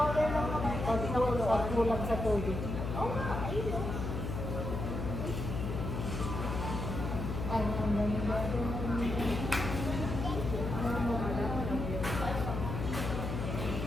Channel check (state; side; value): noise; left; hum, 4 dB below the sound